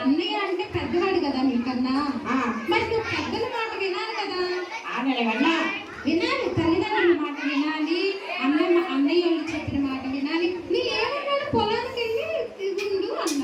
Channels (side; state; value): both; identical; correlation 1.00